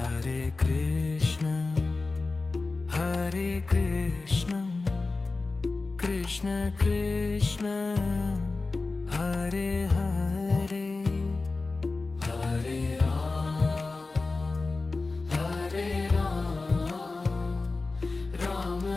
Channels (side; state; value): right; quieter; 3.6 dB